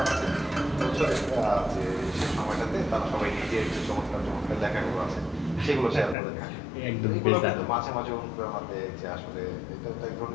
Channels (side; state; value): right; drops out; at 6.2 s